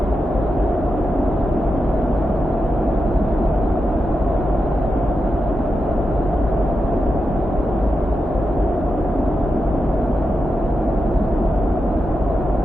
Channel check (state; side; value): normal; both; correlation 0.88